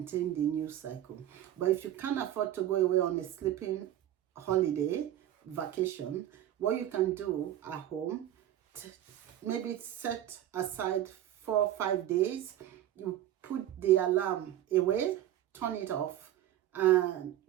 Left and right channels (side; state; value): left; quieter; 12.2 dB